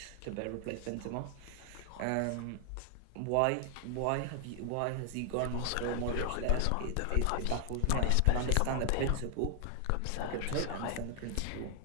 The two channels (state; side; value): different; both; correlation 0.00